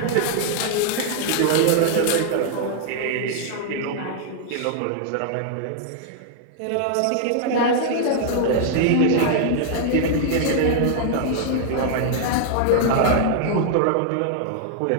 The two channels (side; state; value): both; different; correlation -0.01